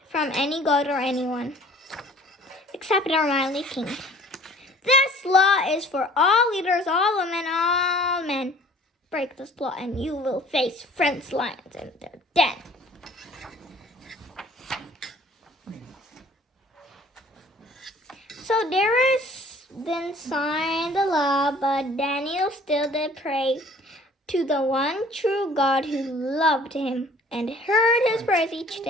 any god or anyone, except our mighty king. This law is for all leaders, all women, all men. Break this law, and you will face friends lions in their den." So Darius then signed the law, but Daniel still did pray to the one true God who loved him and heard his prayers each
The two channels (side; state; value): both; normal; correlation 0.52